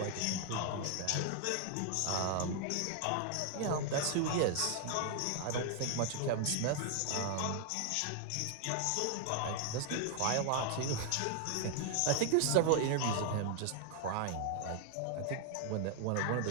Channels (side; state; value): both; different; correlation 0.00